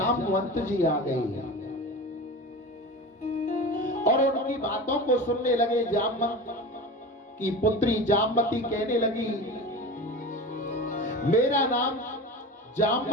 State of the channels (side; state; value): both; normal; correlation 0.30